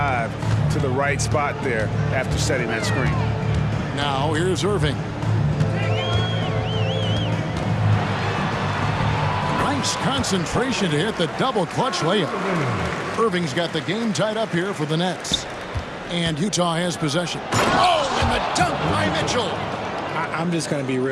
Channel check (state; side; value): identical; both; correlation 1.00